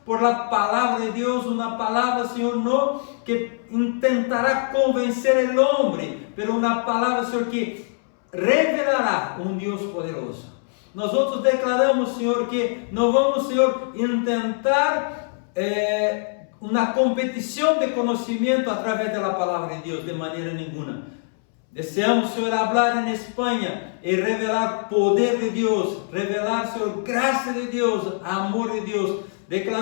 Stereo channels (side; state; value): right; silent; 63 dB below the other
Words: por la palavra de Deus, uma palavra, Senhor, não que intentará convencer o homem, mas uma palavra, Senhor, que revelará Deus poderoso. Nós outros declaramos, Senhor, que não vamos, Senhor, intentar uma competição de conhecimento através da palavra de Deus, de maneira nenhuma. Deseamos, Senhor, falar em Espanha e revelar poder de Deus, revelar, Senhor, graça de Deus, amor de Deus,